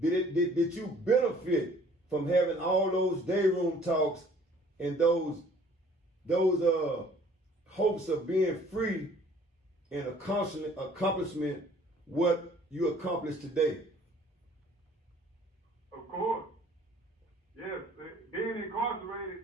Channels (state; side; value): normal; both; correlation 0.55